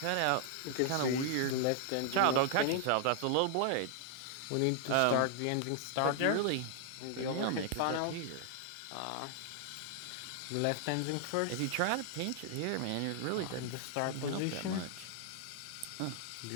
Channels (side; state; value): both; different; correlation 0.00